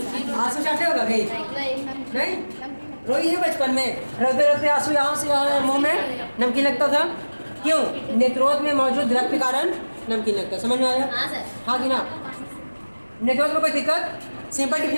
आंसू चाटे होगा कहीं? नहीं? रोई है बचपन में, रोते रोते आंसू यहाँ से यहाँ मुंह में नमकीन लगता था। क्यों? नेत्रोध में मौजूद द्रव के कारण नमकीन लगता है। समझ में आया? हाँ कि ना? नेत्रोध में कोई दिक्कत? सिंपल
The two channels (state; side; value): inverted; both; correlation -1.00